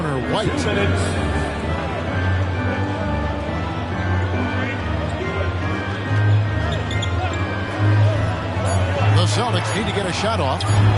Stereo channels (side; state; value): both; identical; correlation 1.00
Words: White. The Celtics need to get a shot off.